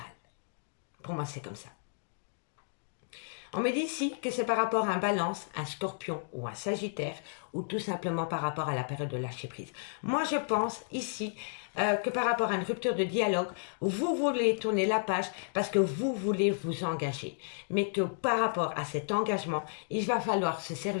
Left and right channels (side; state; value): right; silent; digital silence